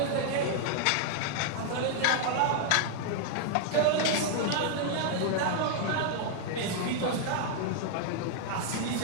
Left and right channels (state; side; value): different; both; correlation 0.00